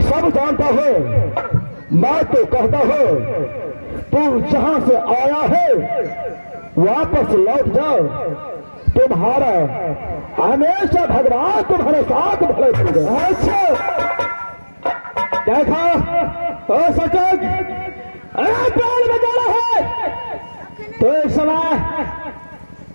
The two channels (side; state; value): both; inverted; correlation -1.00